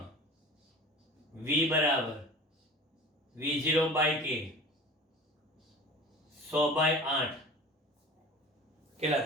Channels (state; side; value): normal; both; correlation 0.39